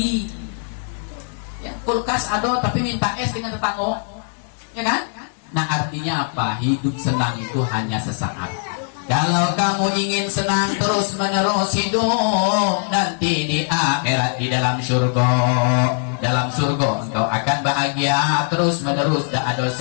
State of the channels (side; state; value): right; silent; 60 dB below the other